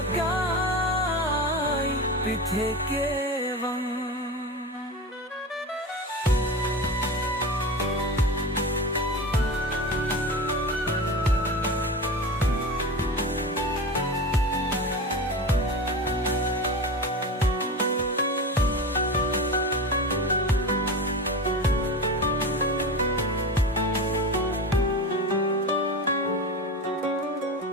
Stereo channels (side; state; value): both; normal; correlation 0.26